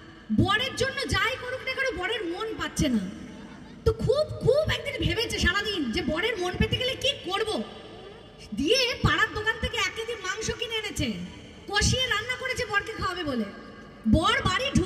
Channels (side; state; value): both; identical; correlation 1.00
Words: বরের জন্য যাই করুক না করো বরের মন পাচ্ছে না। তো খুব খুব একদিন ভেবেছে সারাদিন যে বরের মন পেতে গেলে কি করব। দিয়ে পাড়ার দোকান থেকে 1 কেজি মাংস কিনে এনেছে, কষিয়ে রান্না করেছে বরকে খাওয়াবে বলে। বর বাড়ি